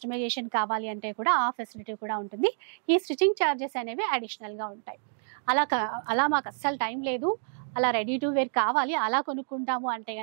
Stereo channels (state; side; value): silent; left; digital silence